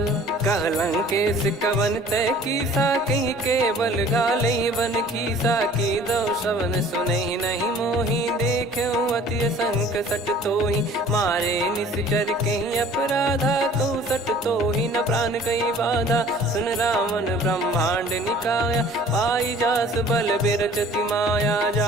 कहलंकेश कवन तय कीसा, कहीं केवल गालई बन खीसा। की दो श्रवण सुनहि नहीं मोही, देखऊं अति संक सट तोहि। मारे निश्चर कहीं अपराधा, कहूँ सट तोहि न प्राण कहीं बाधा। सुन रावण ब्रह्मांड निकाया, पाई जास बल बिरचति माया।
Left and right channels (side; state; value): both; normal; correlation 0.50